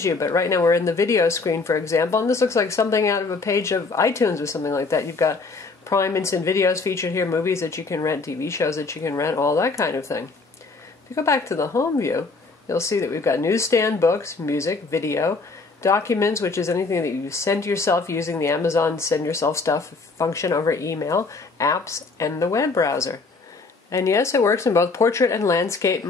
you? But right now we're in the video screen, for example, and this looks like something out of a page of iTunes or something like that. You've got Prime Instant Videos featured here, movies that you can rent, TV shows that you can rent, all that kind of thing. If you go back to the home view, you'll see that we've got newsstand, books, music, video, documents, which is anything that you send yourself using the Amazon Send Yourself Stuff function over email, apps, and the web browser. And yes, it works in both portrait and landscape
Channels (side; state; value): right; quieter; 4.0 dB